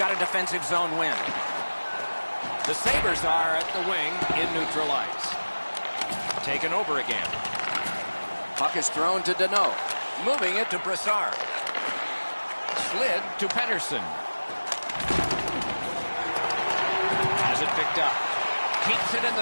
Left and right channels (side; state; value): both; inverted; correlation -1.00